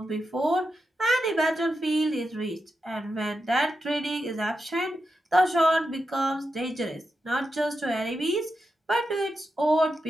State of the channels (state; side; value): normal; both; correlation 0.88